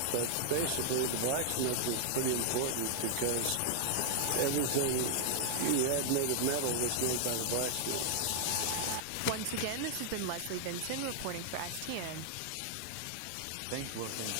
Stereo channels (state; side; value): different; both; correlation -0.01